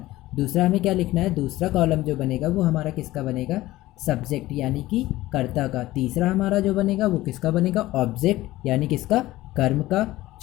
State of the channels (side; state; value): right; quieter; 17.0 dB